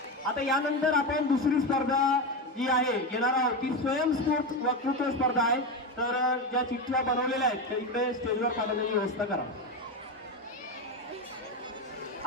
आता यानंतर आपण दुसरी स्पर्धा जी आहे घेणार आहोत ती स्वयंस्फूर्त वक्तृत्व स्पर्धा आहे. तर ज्या चिठ्ठ्या बनवलेल्या आहेत त्या इकडे स्टेजवर पाठवण्याची व्यवस्था करा.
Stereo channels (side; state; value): both; normal; correlation 0.16